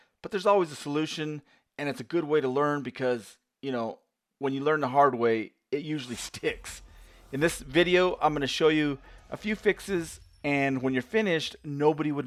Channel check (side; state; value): both; identical; correlation 1.00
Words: but there's always a solution, and it's a good way to learn because, when you learn the hard way, it usually sticks. In this video, I'm going to show you a few fixes, and when you're finished, nobody